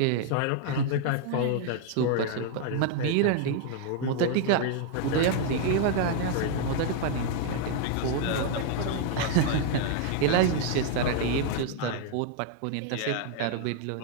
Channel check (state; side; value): different; both; correlation 0.00